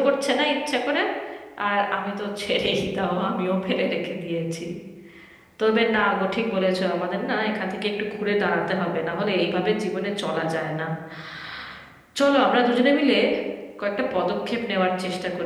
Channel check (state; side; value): identical; both; correlation 1.00